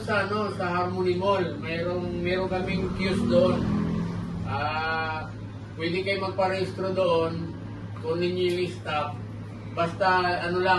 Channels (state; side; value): identical; both; correlation 1.00